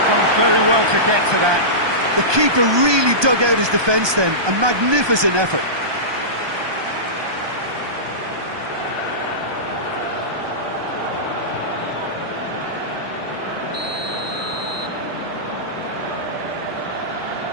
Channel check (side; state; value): left; late; 1.2 ms